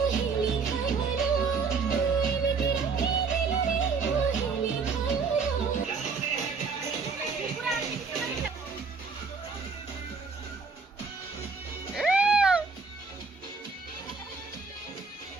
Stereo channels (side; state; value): left; quieter; 4.9 dB